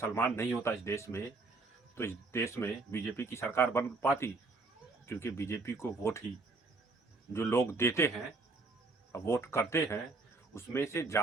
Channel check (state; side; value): quieter; left; 3.6 dB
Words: नहीं होता इस देश में तो इस देश में बीजेपी की सरकार बन पाती? क्योंकि बीजेपी को वोट ही जो लोग देते हैं, वोट करते हैं, उसमें से